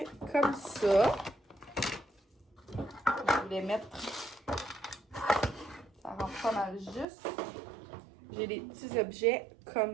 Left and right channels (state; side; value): drops out; left; at 7.1 s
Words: comme ça. Je voulais mettre... Ça rentre pas mal juste. J'ai des petits objets